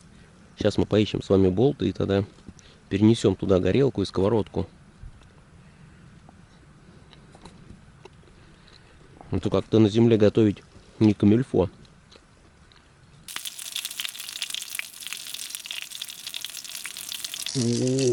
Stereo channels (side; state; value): both; identical; correlation 1.00